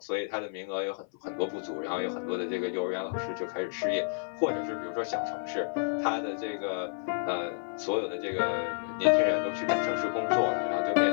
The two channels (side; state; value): right; silent; 57 dB below the other